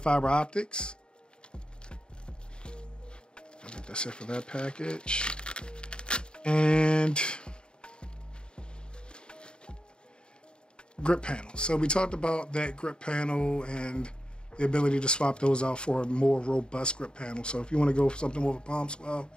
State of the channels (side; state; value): right; late; 0.050 ms